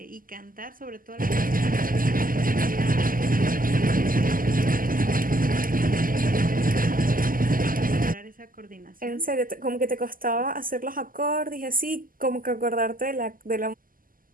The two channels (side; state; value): left; late; 0.41 ms